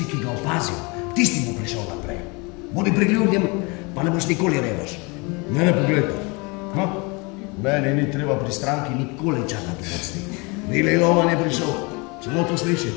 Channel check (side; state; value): right; quieter; 28.6 dB